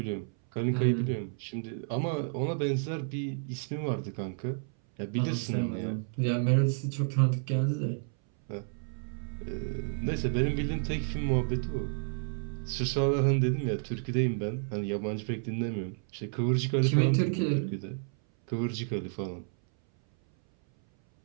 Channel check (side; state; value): left; silent; 57 dB below the other